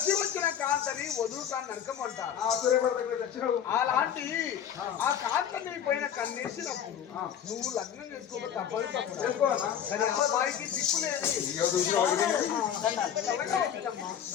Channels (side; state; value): right; quieter; 9.1 dB